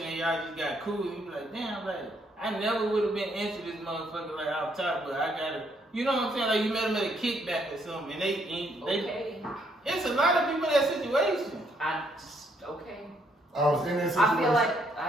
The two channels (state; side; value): normal; both; correlation 0.71